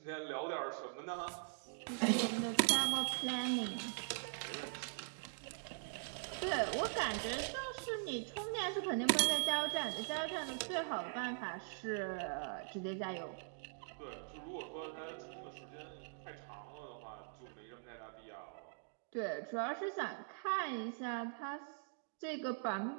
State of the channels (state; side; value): silent; left; digital silence